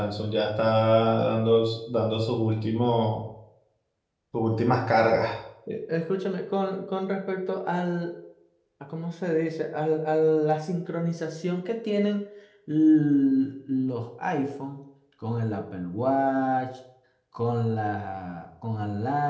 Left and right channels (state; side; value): identical; both; correlation 1.00